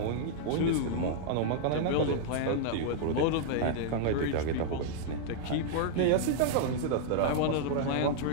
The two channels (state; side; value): different; both; correlation -0.01